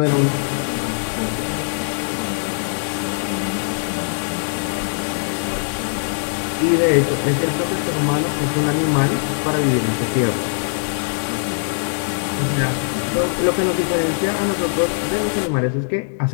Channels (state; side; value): silent; right; digital silence